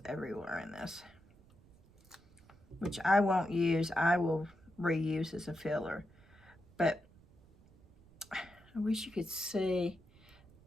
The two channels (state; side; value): noise; right; rumble, 27 dB below the sound